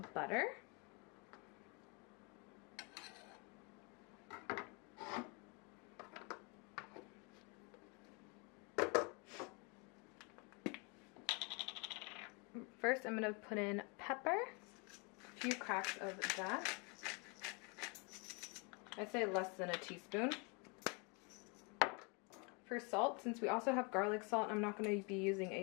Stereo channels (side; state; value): right; quieter; 32.2 dB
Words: butter. First, I'm going to put in pepper, a few cracks of that. I'd say less than a teaspoon. For salt, since we also have garlic salt, I'm not going to be using